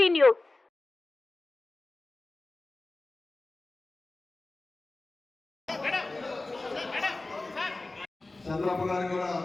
news. Chandrababu గారికి కూడా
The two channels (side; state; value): right; quieter; 3.1 dB